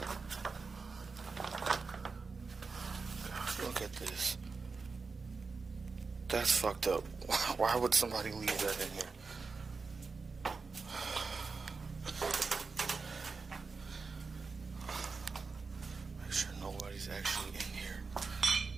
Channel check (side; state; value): left; quieter; 4.5 dB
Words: God, look at this. That's fucked up. Why would somebody leave that in here? Make sure nobody's actually in here.